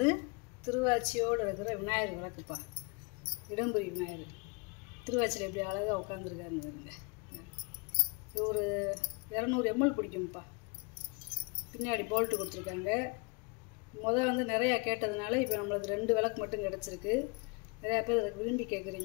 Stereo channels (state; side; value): quieter; right; 31.3 dB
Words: திருவாச்சியோடு இருக்கிற விநாயகர் விளக்குப்பா. இடம்புரி விநாயகர் திருவாச்சியில் எப்படி அழகாக உட்காந்துருக்காருன்னு வருங்க. இது ஒரு 200 ml பிடிக்கும்ப்பா. பின்னாடி போல்ட்டு கொடுத்துருக்காங்க. வந்து நிறையா கேட்டதுனால இப்போ நம்மளுக்கு 2 விளக்கு மட்டும் கிடச்சிருக்கு. நிறையா பேர் அதுக்கு விரும்பி